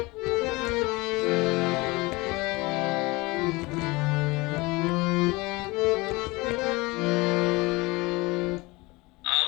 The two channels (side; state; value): right; quieter; 23.3 dB